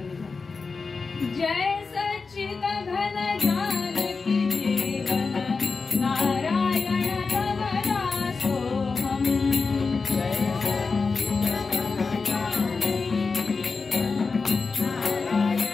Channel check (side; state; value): right; quieter; 4.5 dB